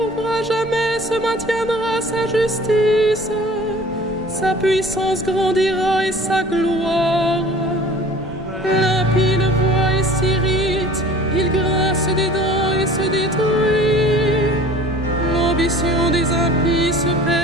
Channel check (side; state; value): both; normal; correlation 0.46